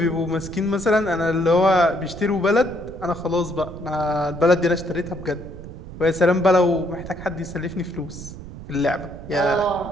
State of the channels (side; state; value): right; noise; rumble, 13 dB below the sound